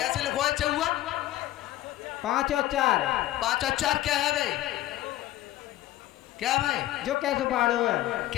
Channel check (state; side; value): quieter; right; 14.9 dB